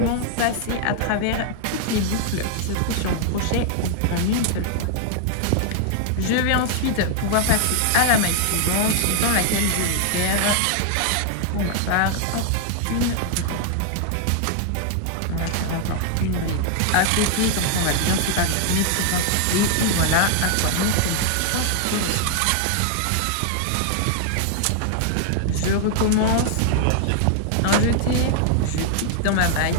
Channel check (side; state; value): both; different; correlation 0.00